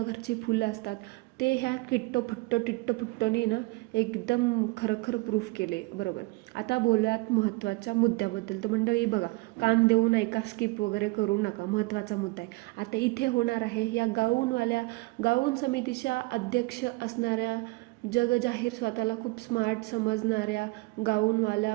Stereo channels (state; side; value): quieter; left; 24.2 dB